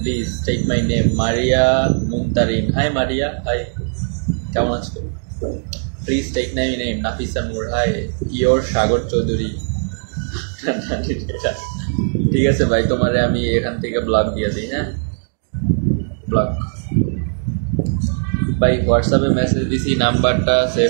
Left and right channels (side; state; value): left; silent; digital silence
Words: take my name Maria Muntarin hi Maria hi কেমন আছো please take my name Nafisa Noor hi your Sagar Chowdhury ঠিক আছে ভাই তোমারে আমি এখান থেকে ব্লক দিয়ে দিই হ্যাঁ ব্লক ভাই হোয়াটসঅ্যাপে মেসেজ দিছি নাম্বারটা